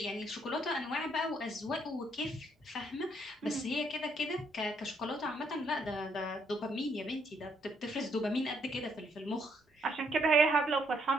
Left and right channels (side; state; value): both; normal; correlation 0.71